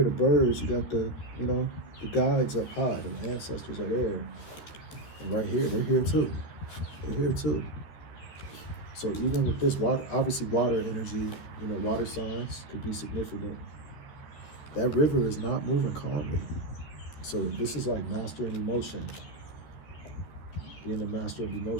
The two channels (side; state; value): right; late; 13 ms